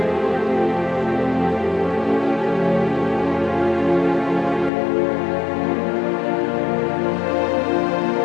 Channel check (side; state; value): right; drops out; at 4.7 s